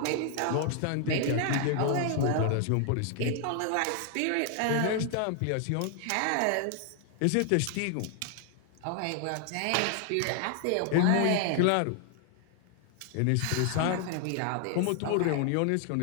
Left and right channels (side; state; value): both; different; correlation 0.00